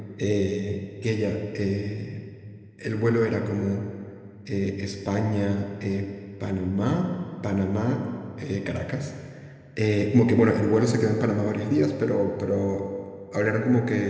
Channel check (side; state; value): both; identical; correlation 1.00